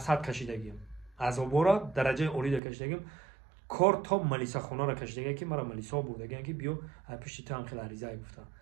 کشیدگیم. عذاب را درجه اولی کشیدگیم. کار تا ملیسا خونه را کشیدگی که مرا ملیسا بردگی که بیو پشت تو هم خیلی عریضه گفتم.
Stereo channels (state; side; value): drops out; left; at 2.6 s